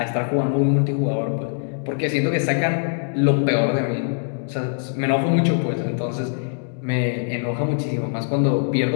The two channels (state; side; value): silent; right; digital silence